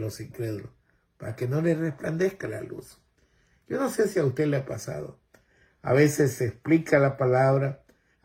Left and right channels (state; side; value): identical; both; correlation 1.00